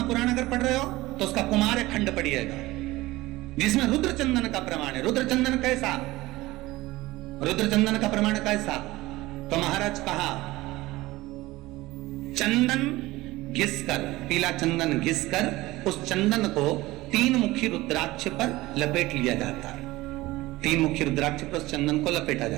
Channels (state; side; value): quieter; left; 18.9 dB